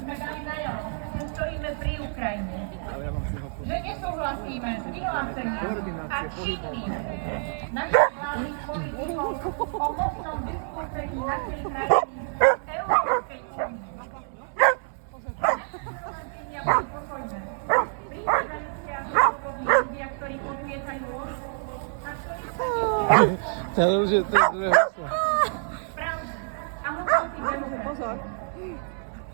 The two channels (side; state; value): left; silent; 60 dB below the other